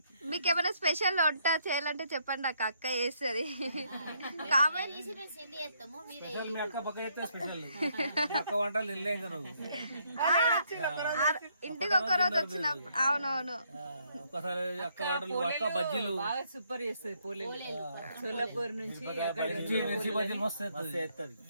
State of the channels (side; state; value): both; inverted; correlation -0.71